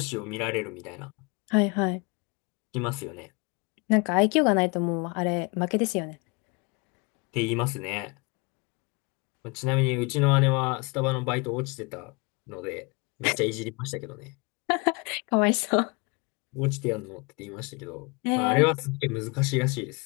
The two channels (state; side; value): quieter; right; 29.5 dB